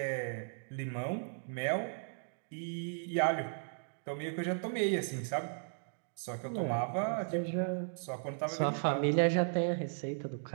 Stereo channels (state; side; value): silent; left; digital silence